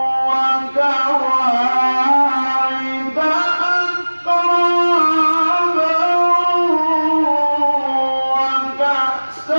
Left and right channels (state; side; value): inverted; both; correlation -1.00